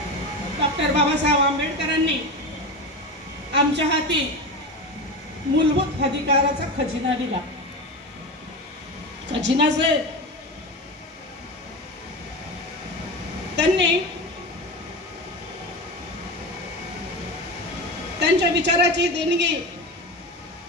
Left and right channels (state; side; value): normal; both; correlation 0.24